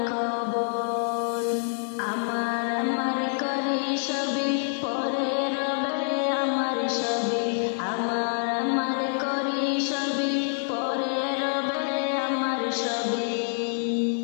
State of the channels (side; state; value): right; silent; digital silence